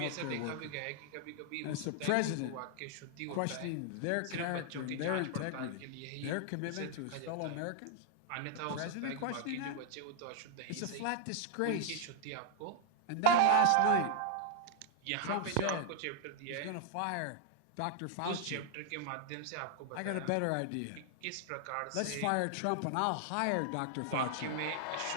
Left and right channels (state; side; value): different; both; correlation 0.00